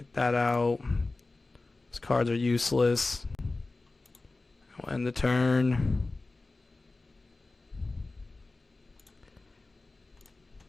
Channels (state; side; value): quieter; right; 3.3 dB